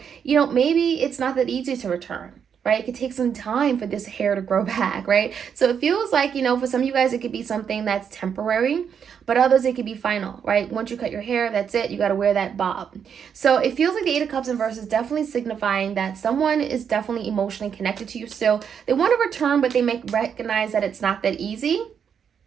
you know, maybe it's not that easy to return, right? It could take some time for this hair to grow back, right? So it feels like, you know, for some of you guys, it could be something that's temporary, but others, it could be final, right? Once you cut your hair, that's it. You got to wear that bob. So it feels like the Eight of Cups in reverse is definitely signifying that someone is definitely emotionally connected to you still. They want to return, but they recognize that it's not that easy.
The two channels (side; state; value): left; quieter; 7.5 dB